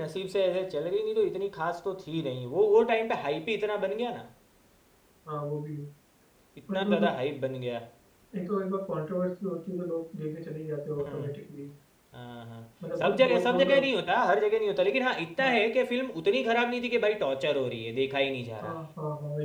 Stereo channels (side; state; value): both; identical; correlation 1.00